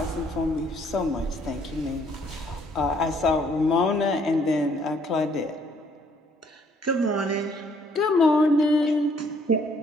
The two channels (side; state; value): both; normal; correlation 0.64